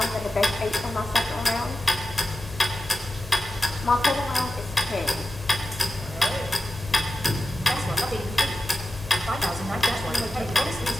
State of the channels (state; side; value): normal; both; correlation 0.94